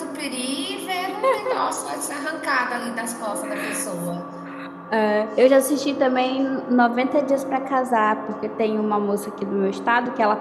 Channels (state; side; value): identical; both; correlation 1.00